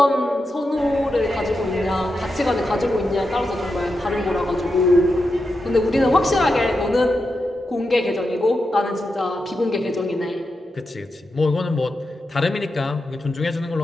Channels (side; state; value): both; normal; correlation 0.88